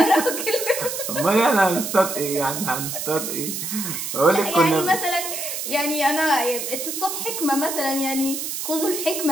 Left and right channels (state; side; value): noise; right; hiss, 4 dB below the sound